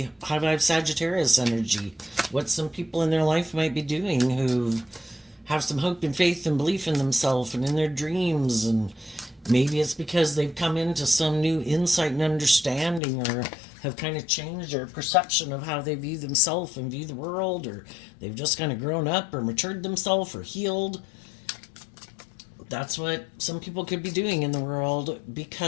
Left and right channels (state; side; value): drops out; right; at 13.0 s